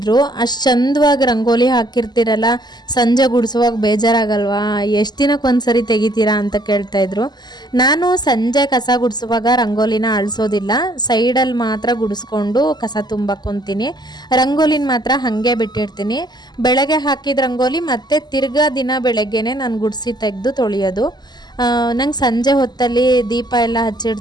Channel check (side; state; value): right; late; 0.21 ms